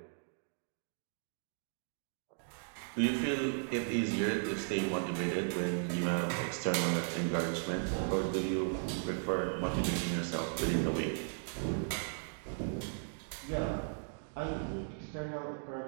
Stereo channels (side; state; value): left; silent; digital silence